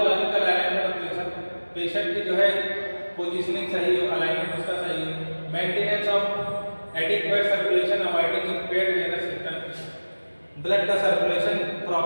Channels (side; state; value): both; inverted; correlation -1.00